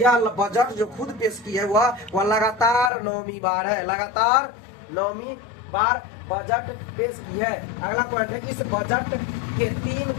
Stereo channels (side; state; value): right; drops out; at 2.9 s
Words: बजट जो खुद पेश की है वह लगातार 9वीं बार है, लगातार 9वीं बार बजट पेश की है। अगला पॉइंट है, इस बजट के 3